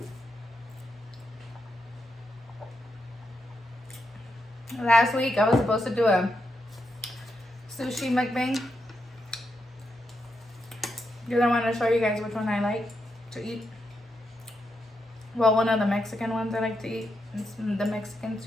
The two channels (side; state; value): both; normal; correlation 0.84